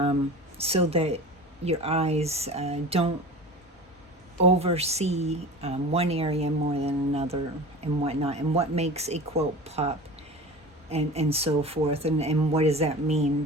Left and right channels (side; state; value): both; normal; correlation 0.35